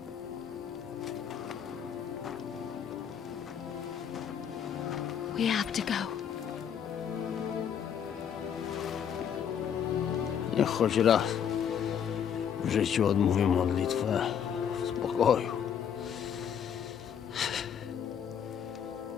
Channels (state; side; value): quieter; right; 8.3 dB